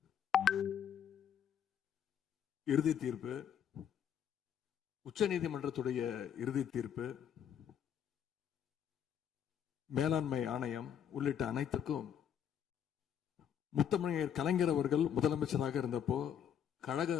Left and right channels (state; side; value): quieter; right; 8.9 dB